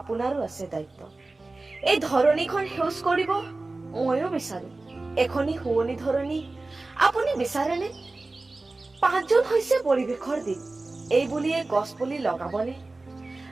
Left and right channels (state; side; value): quieter; left; 3.2 dB